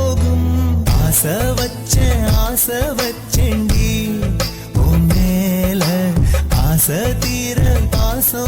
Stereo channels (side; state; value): both; identical; correlation 1.00